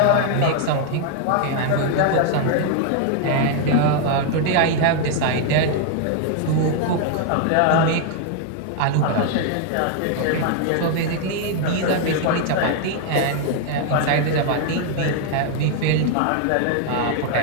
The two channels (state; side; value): different; both; correlation 0.00